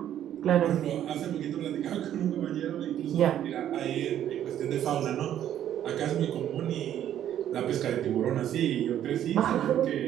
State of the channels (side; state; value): left; quieter; 10.9 dB